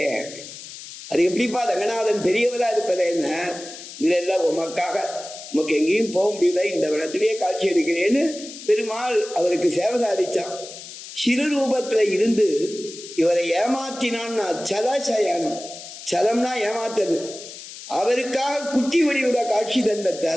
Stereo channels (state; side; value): noise; left; hiss, 13 dB below the sound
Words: அப்படின்னு. அது எப்படிப்பா ரங்கநாதன் பெரியவரா இருப்பது என்ன, இல்ல உமக்காக உமக்கு எங்கேயும் போக முடியல, இந்த வனத்திலேயே காட்சி அளிக்கிறேன்னு பெருமாள் அவருக்கு சேவை சாதிச்சான். சிறு ரூபத்துல இருந்து இவரை ஏமாத்தினான்னா சலசயனம், சலம்னா ஏமாத்தது. அவருக்காக குட்டி வடிவுல காட்சி